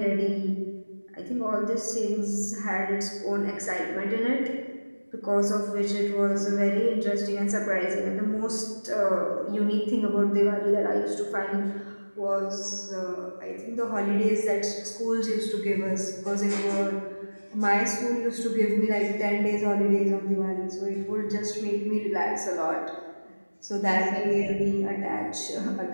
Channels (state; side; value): inverted; both; correlation -1.00